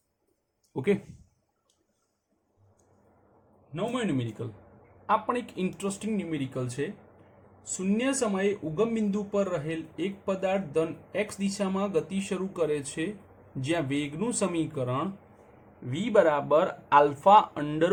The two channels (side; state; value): both; identical; correlation 1.00